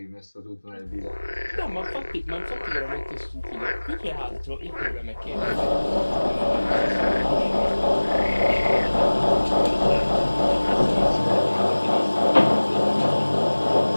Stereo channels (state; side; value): inverted; both; correlation -1.00